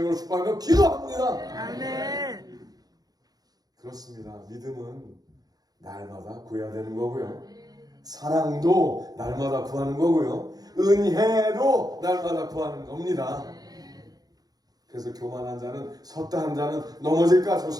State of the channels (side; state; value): left; late; 0.19 ms